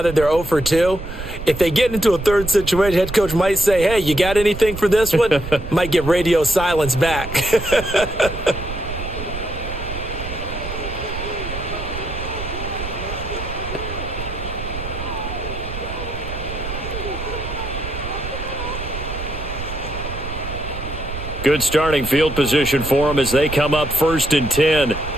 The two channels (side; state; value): right; noise; rumble, 9 dB below the sound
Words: that they're 0 for 2, if they get into a third situation, head coach might say, hey, you got anything for this one? Might get radio silence back. Good starting field position for them as they come up 1st and 10